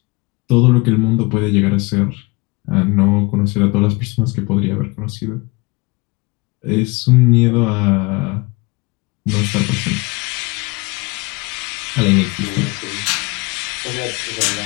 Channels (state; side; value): quieter; right; 25.9 dB